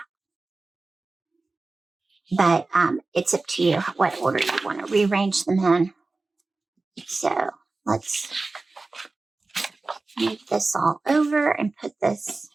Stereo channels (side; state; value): left; quieter; 3.5 dB